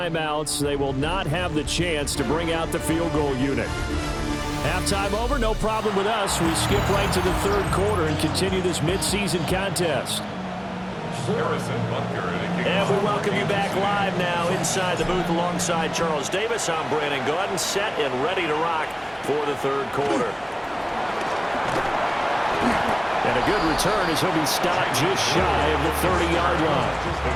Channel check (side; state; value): both; identical; correlation 1.00